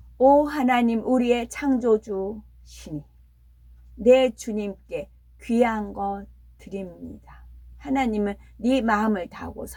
오 하나님 우리의 창조주시니 내 주님께 귀한 것 드립니다. 하나님은 네 마음을 다하고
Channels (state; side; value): identical; both; correlation 1.00